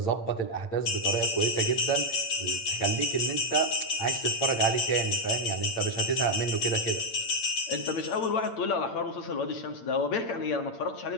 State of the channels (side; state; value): right; late; 8.8 ms